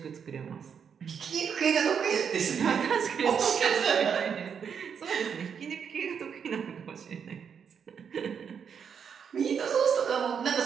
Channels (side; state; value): left; quieter; 7.1 dB